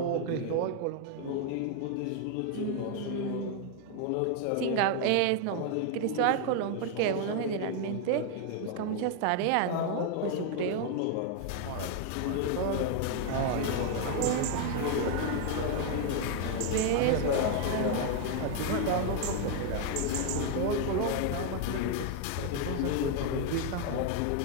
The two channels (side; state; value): both; different; correlation 0.01